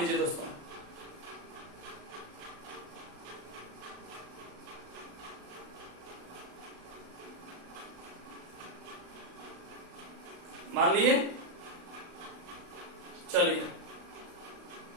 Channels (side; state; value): left; late; 35 ms